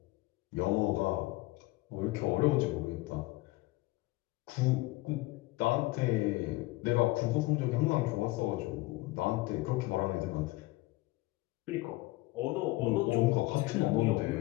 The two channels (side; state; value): right; quieter; 20.3 dB